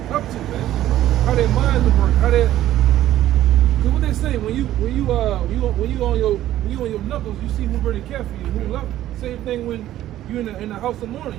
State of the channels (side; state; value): left; quieter; 13.4 dB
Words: to, man. How their minds work, how they. Cause what they say when you on your knuckles, you see who really care for you, who love you. Same thing when you're in the house of mourning.